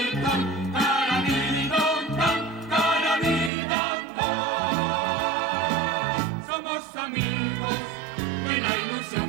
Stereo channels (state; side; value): drops out; left; at 3.5 s